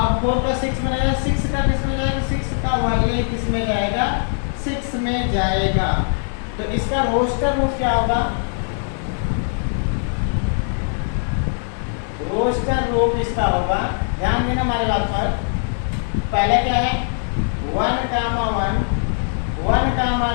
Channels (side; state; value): right; silent; 65 dB below the other